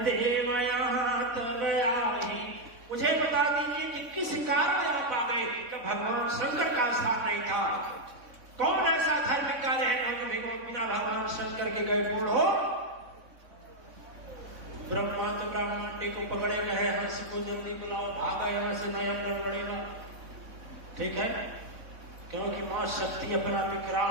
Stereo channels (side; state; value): left; late; 3.6 ms